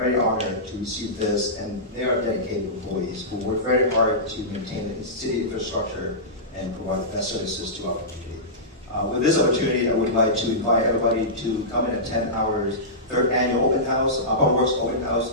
honored to receive this, and they are dedicated employees who work very hard to maintain the city infrastructure and provide the best services to our community. With this opportunity, I would like to invite everybody to come and attend our 3rd annual open house, Public Works open house,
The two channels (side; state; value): both; normal; correlation -0.16